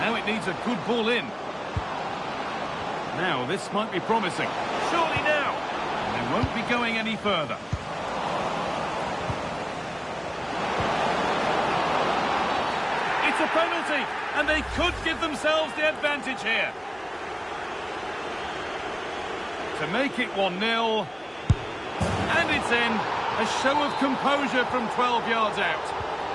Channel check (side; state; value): both; identical; correlation 1.00